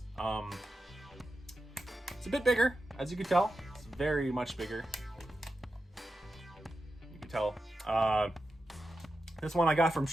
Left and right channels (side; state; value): both; normal; correlation 0.90